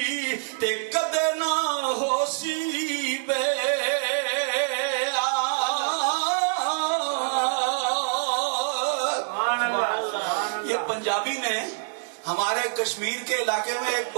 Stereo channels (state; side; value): silent; left; 61 dB below the other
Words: تے کدے نہ ہو سی بے۔ یہ پنجابی میں ہمارے کشمیر کے علاقے میں ایک